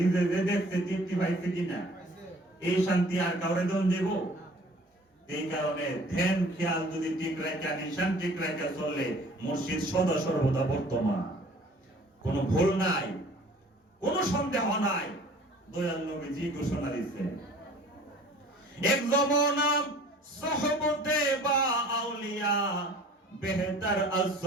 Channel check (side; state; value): both; normal; correlation 0.49